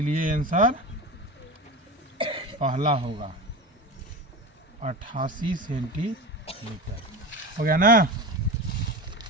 आंसर पहला होगा 88 सेंटीमीटर। हो गया ना?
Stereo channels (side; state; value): both; normal; correlation 0.27